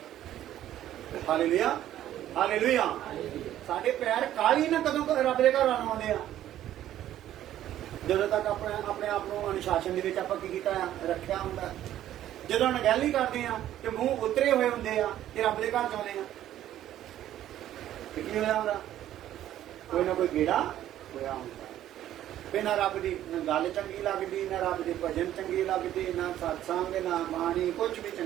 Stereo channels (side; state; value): left; quieter; 12.3 dB